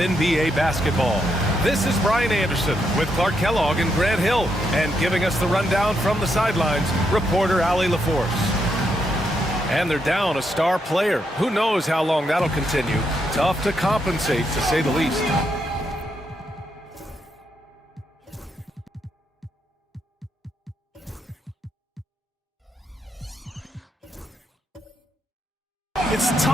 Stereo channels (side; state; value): both; normal; correlation 0.79